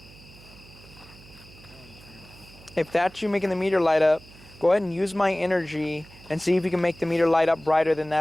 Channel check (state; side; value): noise; right; hum, 22 dB below the sound